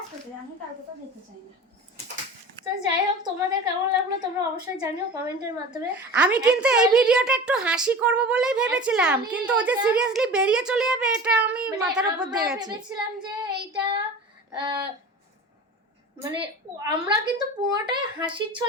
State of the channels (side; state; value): both; normal; correlation 0.36